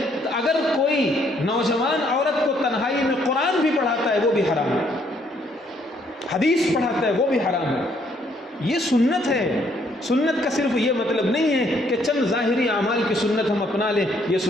اگر کوئی نوجوان عورت کو تنہائی میں قرآن بھی پڑھاتا ہے وہ بھی حرام ہے، حدیث پڑھاتا ہے وہ بھی حرام ہے۔ یہ سنت ہے۔ سنت کا صرف یہ مطلب نہیں ہے کہ چند ظاہری اعمال کی سنت ہم اپنا لیں یہ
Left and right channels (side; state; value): both; normal; correlation 0.68